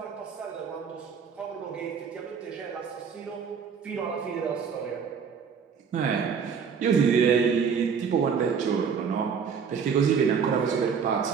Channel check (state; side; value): quieter; left; 6.5 dB